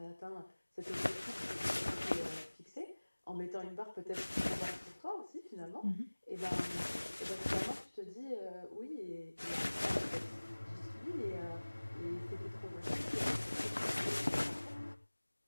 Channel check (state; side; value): inverted; both; correlation -1.00